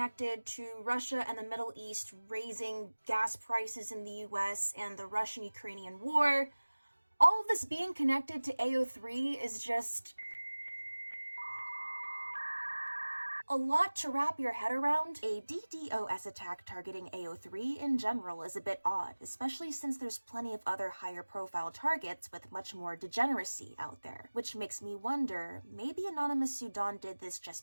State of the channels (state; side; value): inverted; both; correlation -1.00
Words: to Russia and the Middle East raising gas prices in the US and the Russian-Ukrainian war. All of this being connected to AO3 is just a lot to wrap your head around. A DDoS attack targeting AO3 in general is a bit odd, especially since there's plenty of other higher profile targets with much more degeneracy out there, which makes me wonder, maybe Anonymous Sudan did this just